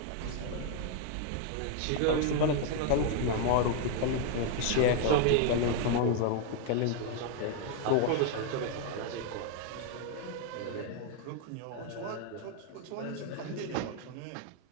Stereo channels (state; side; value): different; both; correlation 0.00